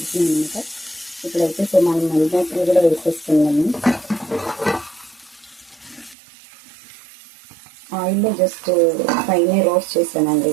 అనమాట. ఇప్పుడైతే సో మనం మల్లిపాయలు కూడా వేసేస్తున్నాము. ఆయిల్లో జస్ట్ పైన రోస్ట్ చేశానండి.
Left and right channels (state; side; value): drops out; left; at 6.2 s